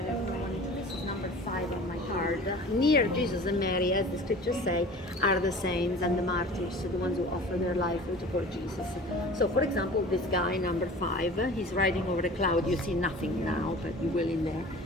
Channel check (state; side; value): normal; both; correlation 0.42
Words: everyone wanted to. This is number 5 on my card. Near Jesus and Mary, as the scriptures say, are the saints and the martyrs, the ones who offer their life to support Jesus. So, for example, this guy, number 5, he's riding over a cloud. You see nothing now, but you will in there.